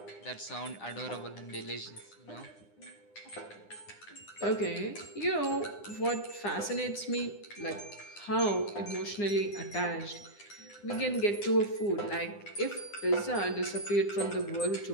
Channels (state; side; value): late; right; 9.8 ms